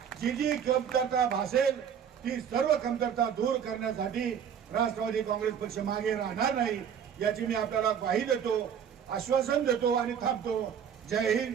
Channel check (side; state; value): left; quieter; 8.1 dB